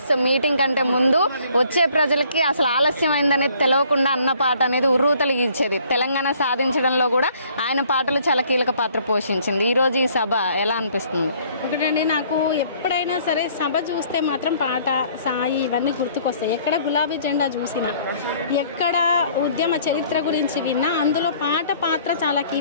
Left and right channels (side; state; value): both; inverted; correlation -0.59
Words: మీటింగ్ కంటే ముందు వచ్చే ప్రజలకి అసలు ఆలస్యమైందనేది తెలియకుండా అన్న పాట అనేది ఉర్రూతలిగించేది. తెలంగాణ సాధించడంలో కూడా ఆయన పాటలు చాలా కీలక పాత్ర పోషించింది. ఈరోజు ఈ సభ ఎలా అనిపిస్తుంది? ఒకటండి, నాకు ఎప్పుడైనా సరే సభ చూస్తే మాత్రం పాట, సాయి ఇవన్నీ గుర్తుకొస్తాయి. ఎక్కడ గులాబీ జెండా చూసినా, ఎక్కడ ఉద్యమ చరిత్ర గురించి విన్నా అందులో పాట పాత్ర చాలా